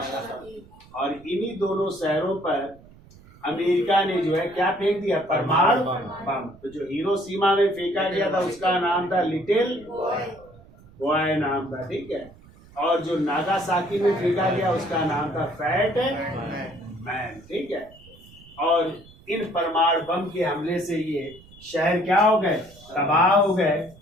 और इन्हीं दोनों शहरों पर अमेरिका ने जो है क्या फेंक दिया? परमाणु बम। तो जो हिरोशिमा में फेंका गया था उसका नाम था लिटिल बॉय नाम था, ठीक है। और जो नागासाकी में फेंका गया उसका नाम था फैट मैन, ठीक है। और इन परमाणु बम के हमले से ये शहर क्या हो गए? तबाह हो गए।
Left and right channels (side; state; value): right; noise; rumble, 24 dB below the sound